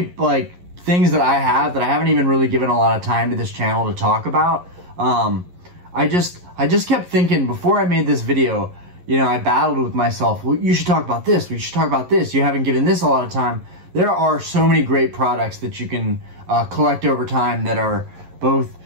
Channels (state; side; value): late; left; 11 ms